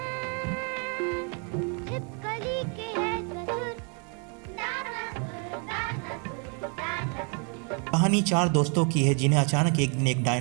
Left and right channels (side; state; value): left; quieter; 38.0 dB